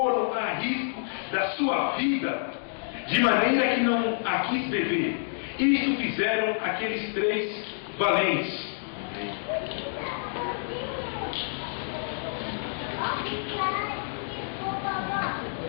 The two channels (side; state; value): right; silent; digital silence